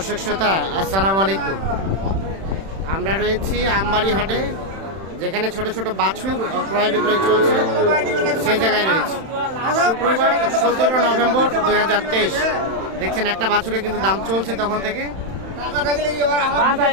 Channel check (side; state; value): left; late; 31 ms